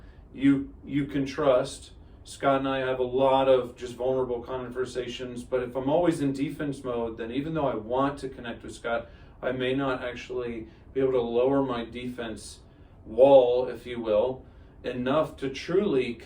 you can trust. Scott and I have a lot of just vulnerable conversations, but if I'm always in defense mode, then even though I want to connect with Scott, I may not actually be able to lower my defense wall, if you will, enough to truly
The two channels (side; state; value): both; identical; correlation 1.00